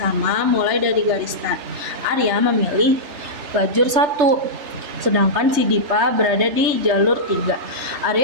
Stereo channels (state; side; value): late; left; 3.3 ms